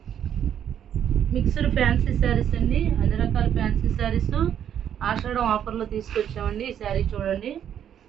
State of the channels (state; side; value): quieter; left; 9.5 dB